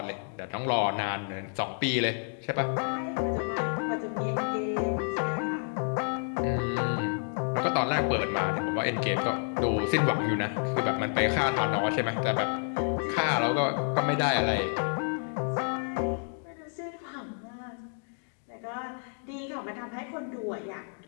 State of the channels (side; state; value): right; silent; 58 dB below the other